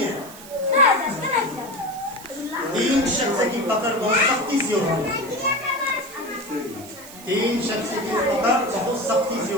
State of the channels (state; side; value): noise; right; hiss, 17 dB below the sound